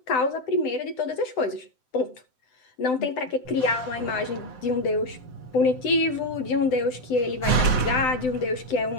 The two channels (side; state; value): right; late; 7.8 ms